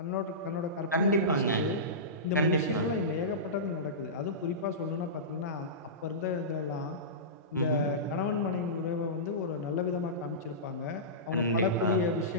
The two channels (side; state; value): both; normal; correlation -0.20